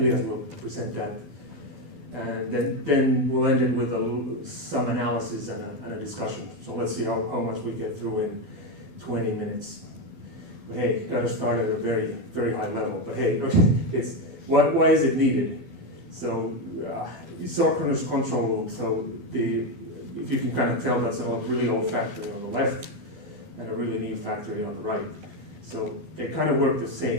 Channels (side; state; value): left; late; 12 ms